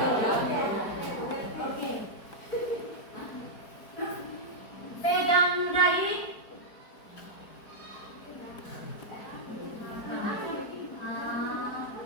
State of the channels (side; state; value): right; late; 4.6 ms